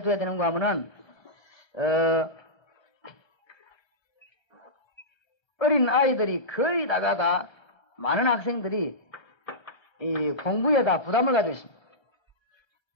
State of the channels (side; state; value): right; late; 1.3 ms